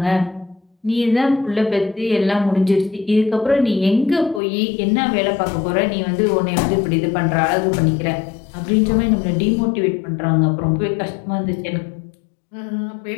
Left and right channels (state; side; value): drops out; right; at 4.4 s